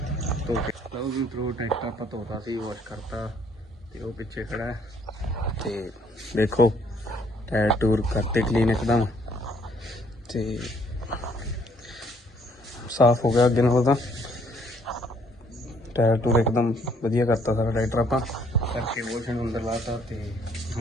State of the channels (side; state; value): both; normal; correlation 0.65